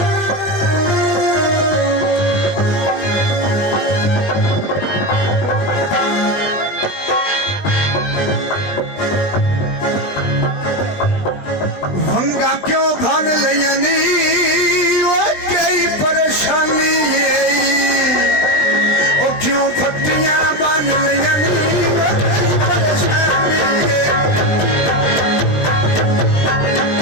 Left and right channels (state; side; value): late; right; 20 ms